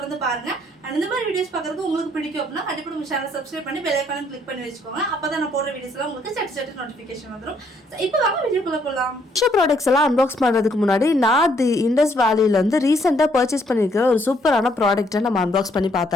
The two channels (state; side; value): normal; both; correlation 0.68